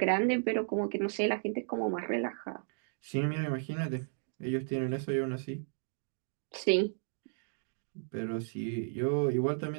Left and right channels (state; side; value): silent; left; digital silence